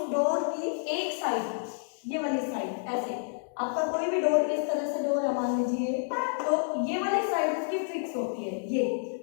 डोर की एक साइड, ये वाली साइड, ऐसे आपका कोई भी डोर इस तरह से डोर है मान लीजिए, तो ये वाली साइड उसकी फिक्स होती है ये।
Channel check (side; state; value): right; silent; digital silence